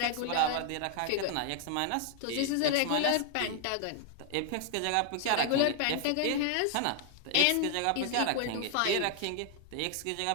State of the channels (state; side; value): different; both; correlation 0.00